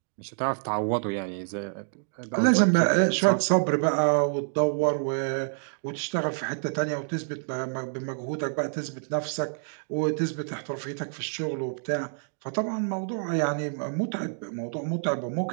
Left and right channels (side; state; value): left; silent; digital silence